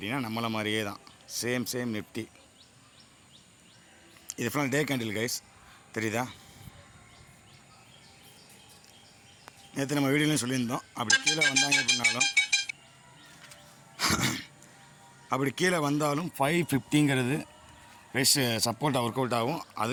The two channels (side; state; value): both; identical; correlation 1.00